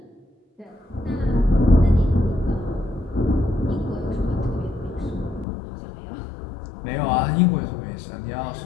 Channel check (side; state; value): right; drops out; at 5.5 s